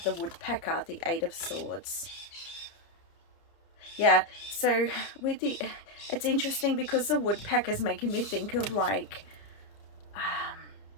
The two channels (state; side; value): late; right; 30 ms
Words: the woodpecker, the 8 of swords. Yeah, so with the, it's interesting because the woodpecker's making me think of like,